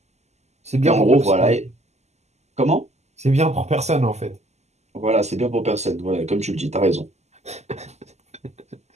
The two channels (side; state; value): left; late; 0.33 ms